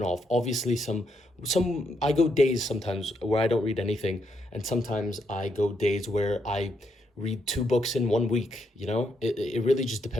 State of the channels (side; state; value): both; normal; correlation 0.78